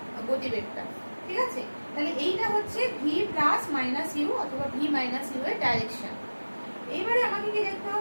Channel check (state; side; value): inverted; both; correlation -1.00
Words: গতিবেগটা, ঠিক আছে। তাহলে এইটা হচ্ছে ভি প্লাস মাইনাস ইউ অথবা ভি মাইনাস ইউ এর ডাইরেকশন। এবারে আমাকে কি দেখতে